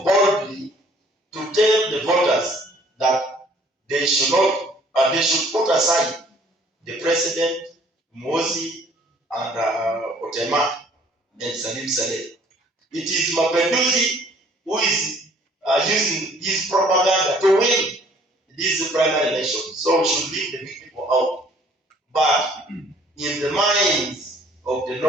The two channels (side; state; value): both; normal; correlation 0.58